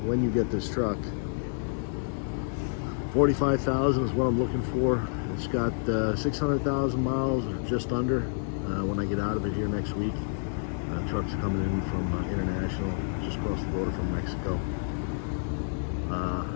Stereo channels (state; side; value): silent; right; digital silence